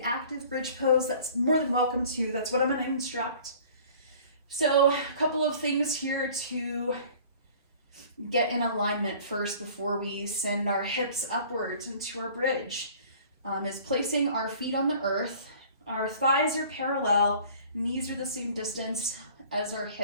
active bridge pose, that's more than welcome to. That's what I'm going to instruct. So a couple of things here to get in alignment first before we send our hips upwards into our bridge. is placing our feet on the earth. Our thighs are parallel, knees are the same distance as our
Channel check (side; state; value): both; inverted; correlation -0.49